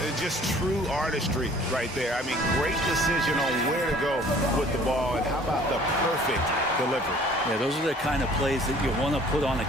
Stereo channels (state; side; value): normal; both; correlation 0.53